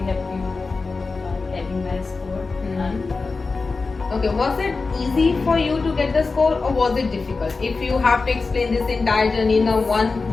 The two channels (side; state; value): right; quieter; 4.1 dB